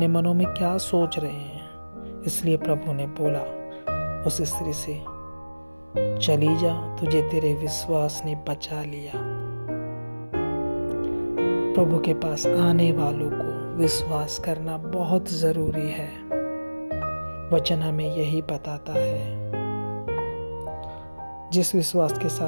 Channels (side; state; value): both; inverted; correlation -1.00